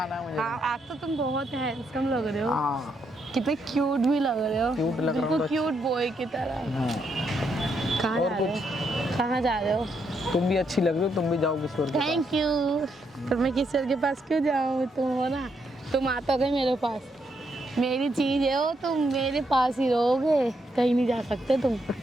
है मुझे। हाँ, आज तो तुम बहुत हैंडसम लग रहे हो। हाँ कितने क्यूट भी लग रहे हो। Cute लग रहा हूँ बिल्कुल तो- क्यूट बॉय की तरह। हाँ। कहाँ और जा रहे हो? कहाँ जा रहे हो? तुम भी अच्छी लग रही हो, तुम भी जाओ किसी और के पास। Thank you. पर मैं किसी और के पास क्यों जाऊँ? तुम हो ना, तुम आता गए मेरे पास। मेरी चीज है वो, तुम मेरे पास ही रहोगे, कहीं नहीं जा सकते तुम।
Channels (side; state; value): both; normal; correlation 0.78